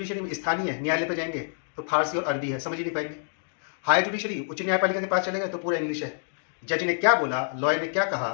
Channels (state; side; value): silent; right; digital silence